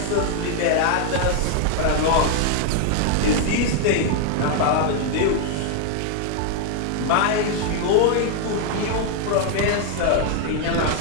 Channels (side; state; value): both; different; correlation 0.00